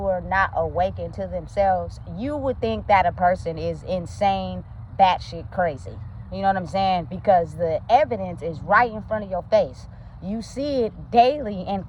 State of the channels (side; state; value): both; identical; correlation 1.00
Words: are not awakened to themselves, you would think that a person is insane, batshit crazy. You know what I'm saying? Because the evidence is right in front of your face. You see it daily and